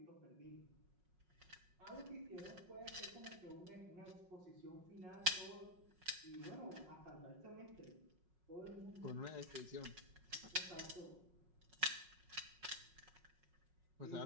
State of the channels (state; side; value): late; left; 5.4 ms